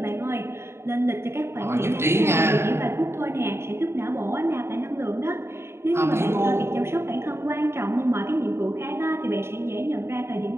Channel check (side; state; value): left; late; 0.12 ms